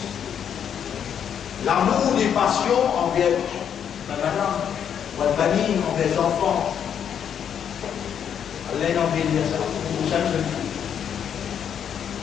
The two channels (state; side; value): quieter; right; 8.5 dB